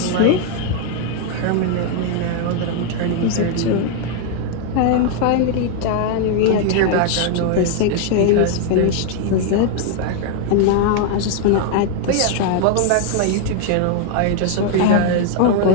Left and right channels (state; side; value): different; both; correlation 0.00